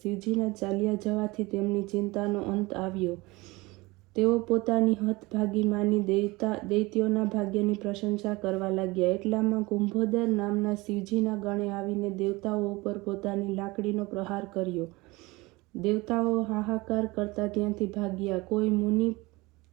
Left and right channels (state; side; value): quieter; left; 22.6 dB